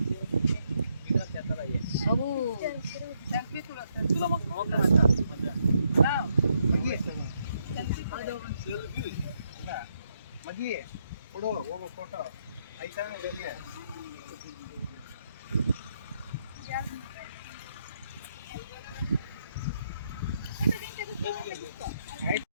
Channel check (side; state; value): both; inverted; correlation -0.77